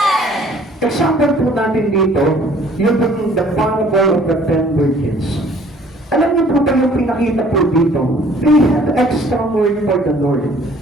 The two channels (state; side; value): normal; both; correlation 0.56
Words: Example po natin dito, yung the parable of the 10 virgins. Alam niyo po ba yung pinakita po dito? They have extra word for the Lord.